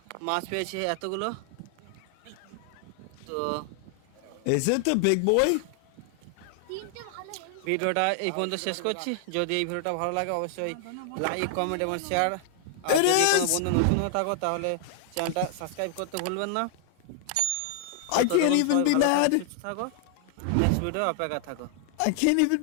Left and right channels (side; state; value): both; different; correlation 0.00